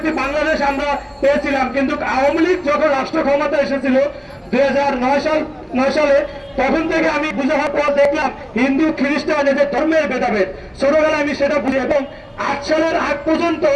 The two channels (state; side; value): identical; both; correlation 1.00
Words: বাংলাদেশ আমরা পেয়েছিলাম। কিন্তু আওয়ামী লীগ যখন রাষ্ট্র ক্ষমতা এসেছিল 2009 সালে, তখন থেকে আমি বুঝার পর দেখলাম হিন্দু খ্রিস্টান এদের ধর্মের ভেদাভেদ। ছোটবেলায় আমি সেটা বুঝি এবং 8 সালের আগ পর্যন্ত